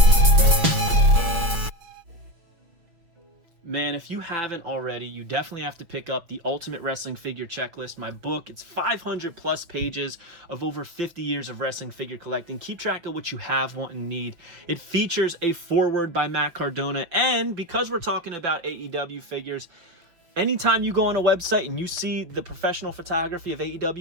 Man, if you haven't already, you definitely have to pick up the Ultimate Wrestling Figure Checklist, my book. It's 500 plus pages of over 50 years of wrestling figure collecting. Keep track of what you have, want, and need. It features a foreword by Matt Cardona, and because we're talking about AEW figures, anytime you go on a website and you see the professional photography of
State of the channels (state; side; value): late; left; 6.0 ms